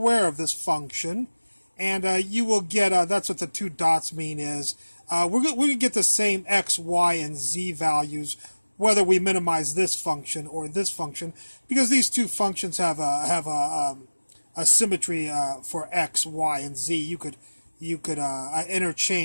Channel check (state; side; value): inverted; both; correlation -1.00